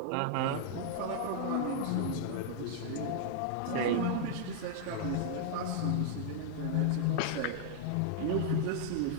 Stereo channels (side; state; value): both; different; correlation -0.01